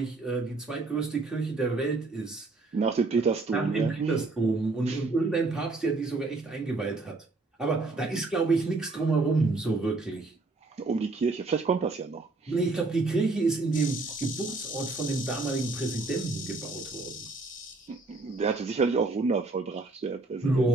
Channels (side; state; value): left; quieter; 3.4 dB